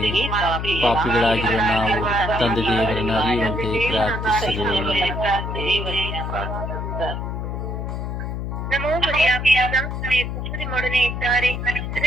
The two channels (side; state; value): left; noise; hum, 4 dB below the sound